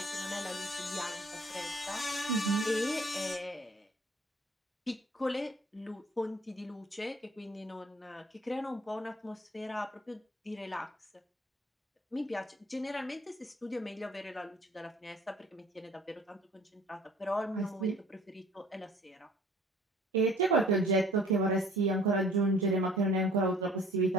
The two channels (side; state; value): both; normal; correlation 0.53